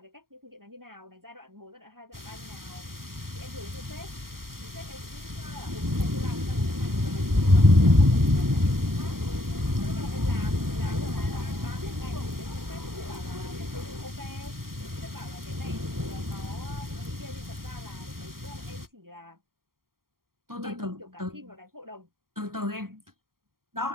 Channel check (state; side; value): late; left; 0.93 ms